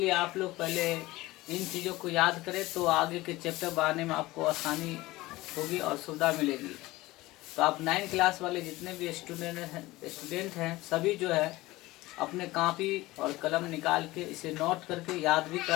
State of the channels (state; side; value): quieter; right; 19.1 dB